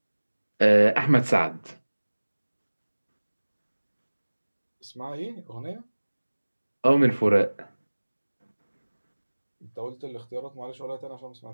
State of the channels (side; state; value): both; inverted; correlation -1.00